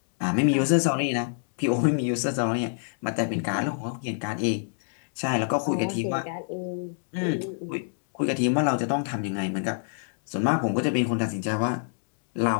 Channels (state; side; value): silent; right; 60 dB below the other